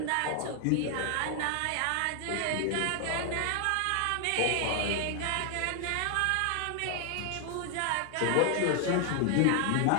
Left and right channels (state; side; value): different; both; correlation 0.00